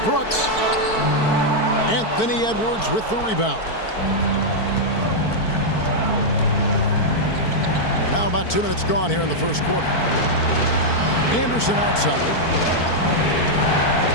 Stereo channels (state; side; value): late; right; 4.5 ms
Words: Brooks. Anthony Edwards with the rebound. Now about 2 minutes gone here in the first quarter. Anderson outside.